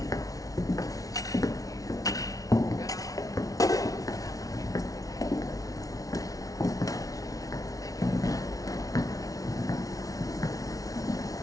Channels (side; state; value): right; late; 0.18 ms